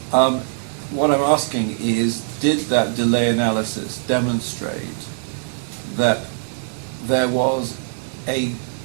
what I'm asking is, did that delay analysis demonstrate that there was a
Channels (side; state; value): left; silent; digital silence